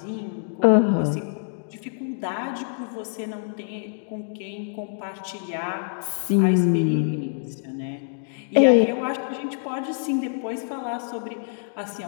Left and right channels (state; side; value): silent; right; digital silence